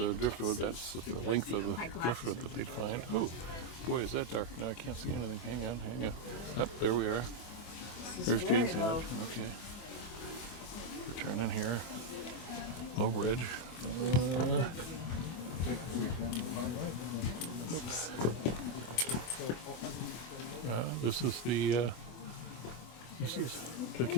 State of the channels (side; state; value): right; late; 24 ms